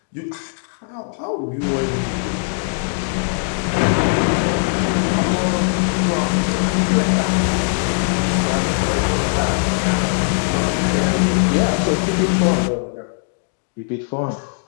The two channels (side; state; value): right; silent; digital silence